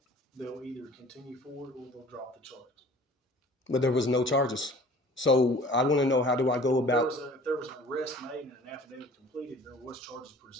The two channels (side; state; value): both; normal; correlation 0.47